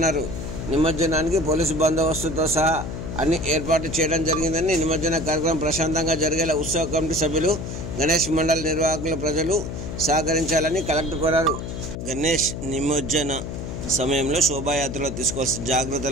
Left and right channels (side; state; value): left; noise; hum, 6 dB below the sound